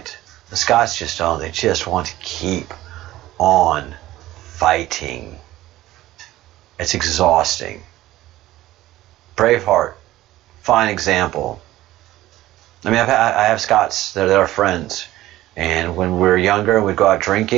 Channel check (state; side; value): quieter; left; 15.7 dB